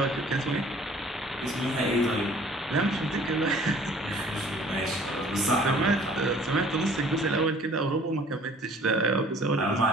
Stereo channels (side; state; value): both; normal; correlation 0.53